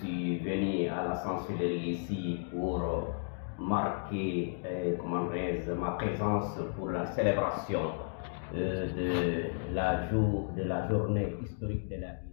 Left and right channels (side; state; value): right; silent; digital silence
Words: venu à la chancellerie ici pour marquer ma présence pour la célébration de la journée historique de la